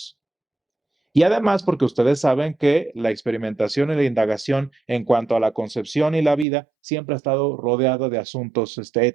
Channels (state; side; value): drops out; left; at 6.5 s